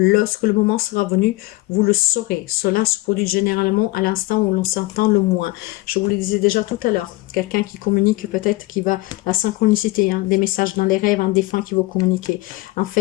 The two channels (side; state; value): right; quieter; 20.9 dB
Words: le moment sera venu, vous le saurez. Cela se produit généralement à l'instant où l'on s'entend le moins. Je vous le disais déjà tout à l'heure. Quelqu'un qui communique peut-être qui va... La synchronicité, hein, des messages dans les rêves, un défunt qui va communiquer. En